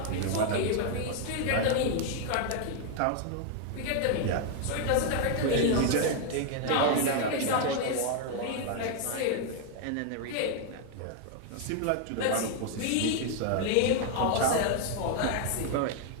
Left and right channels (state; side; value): different; both; correlation 0.00